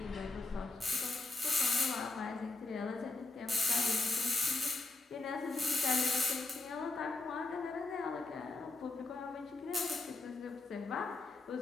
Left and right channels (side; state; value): right; quieter; 3.2 dB